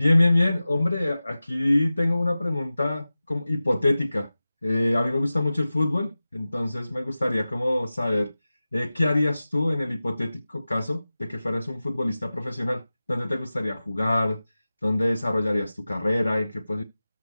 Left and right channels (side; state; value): both; inverted; correlation -0.96